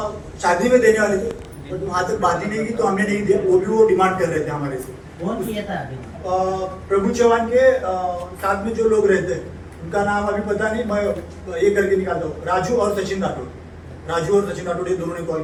शादी में देने वाले थे, बट वहाँ तक बात ही नहीं की तो हमने नहीं दिया। वो डिमांड कर रहे थे हमारे से। कौन किया था अभी? प्रभु चौहान के साथ में जो लोग रहते हैं उनका नाम अभी पता नहीं, मैं ये करके निकालता हूँ। राजू और सचिन राठौड़, ये दोनों ने कॉल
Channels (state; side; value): identical; both; correlation 1.00